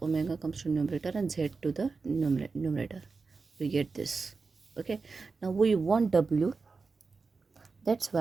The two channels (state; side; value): quieter; left; 4.4 dB